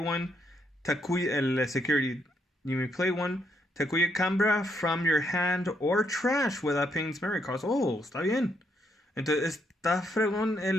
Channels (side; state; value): both; normal; correlation 0.76